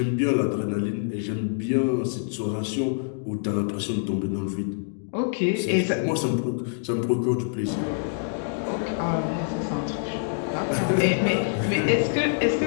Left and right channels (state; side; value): silent; right; digital silence